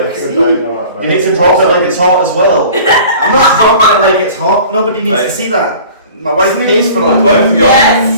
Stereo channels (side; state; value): both; inverted; correlation -0.45